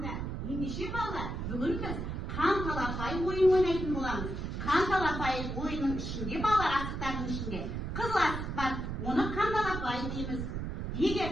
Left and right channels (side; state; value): right; noise; rumble, 4 dB below the sound